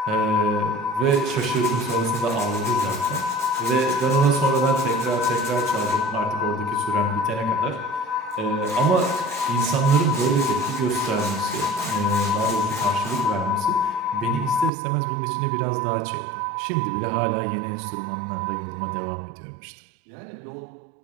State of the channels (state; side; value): drops out; left; at 14.7 s